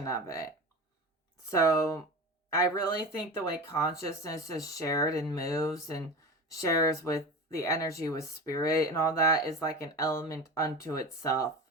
of it. So I really think the way consciousness is shared and moves and shares with the energy with spirit and all that is like an element unto itself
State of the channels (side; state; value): both; normal; correlation 0.30